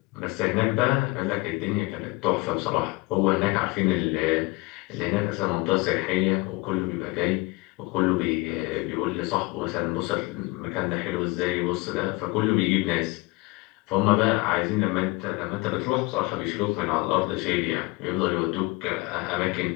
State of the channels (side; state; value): right; quieter; 23.9 dB